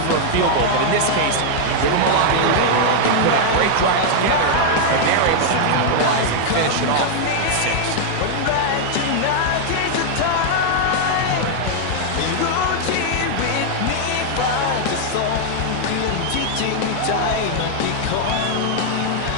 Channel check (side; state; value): both; different; correlation 0.00